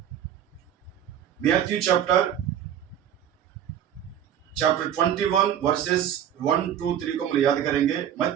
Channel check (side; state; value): left; quieter; 9.9 dB